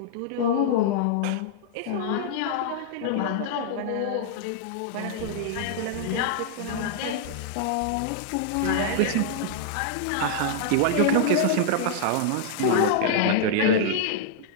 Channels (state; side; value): different; both; correlation -0.01